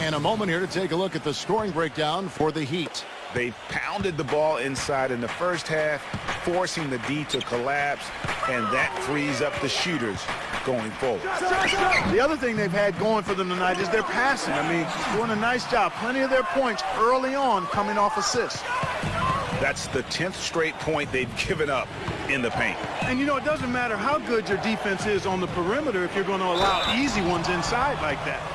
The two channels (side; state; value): both; identical; correlation 1.00